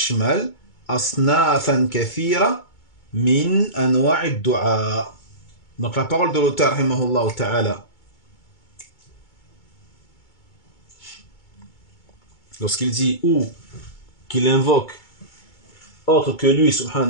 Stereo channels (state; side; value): late; right; 2.2 ms